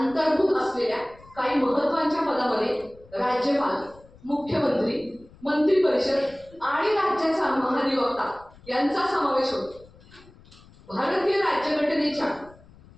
असलेल्या काही महत्त्वाच्या पदामध्ये राज्यपाल, मुख्यमंत्री, मंत्री परिषद आणि राज्याचा महाधिवक्ता यांचा समावेश होतो. भारतीय राज्यघटनेच्या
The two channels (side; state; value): left; noise; rumble, 24 dB below the sound